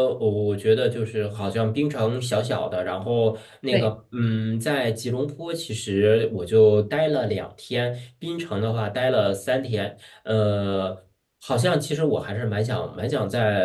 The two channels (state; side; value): identical; both; correlation 1.00